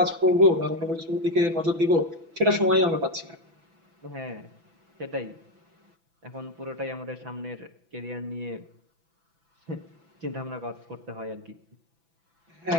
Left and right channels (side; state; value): left; late; 6.0 ms